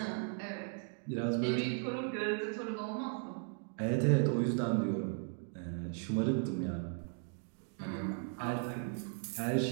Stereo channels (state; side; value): silent; left; 53 dB below the other